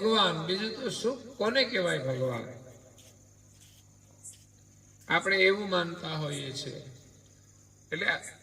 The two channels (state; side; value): identical; both; correlation 1.00